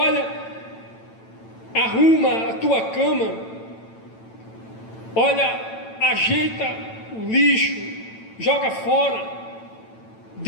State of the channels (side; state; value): right; late; 9.0 ms